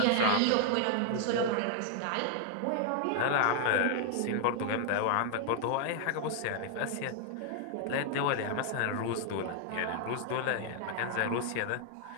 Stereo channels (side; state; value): both; different; correlation 0.00